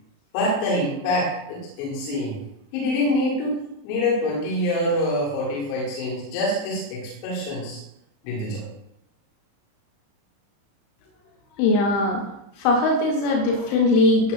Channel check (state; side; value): late; right; 35 ms